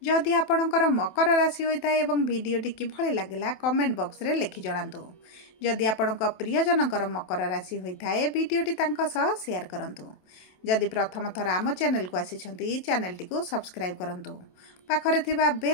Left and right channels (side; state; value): right; late; 27 ms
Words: जदि आपणकर मकर राशि होता एवं वीडियोटी किभली लागला कमेंट बॉक्स रे लिखि जणांतु। जदि आपणक प्रियजनकर मकर राशि होता है वीडियोटी तांका सह शेयर करंतु। जदि प्रथम थर आम चैनल को आसी चैनल टी को सब्सक्राइब करंतु। पाखरे थिबा